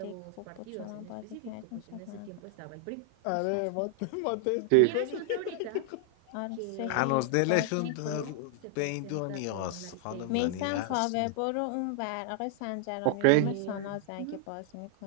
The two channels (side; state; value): both; different; correlation 0.00